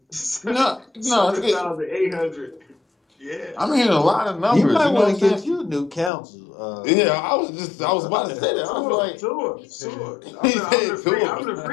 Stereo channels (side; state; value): right; drops out; at 6.1 s